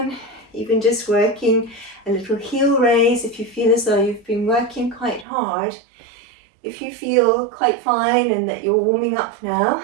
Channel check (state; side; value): drops out; left; at 5.2 s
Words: even just working a little heel raise if you feel as though you've been working quite hard. If you feel quite fine and that you're warming up now,